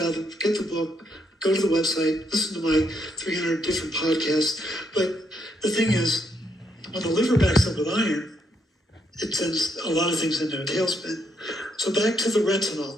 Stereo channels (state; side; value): normal; both; correlation 0.75